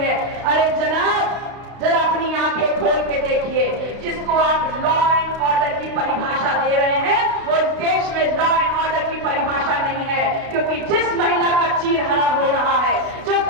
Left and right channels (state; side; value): late; left; 32 ms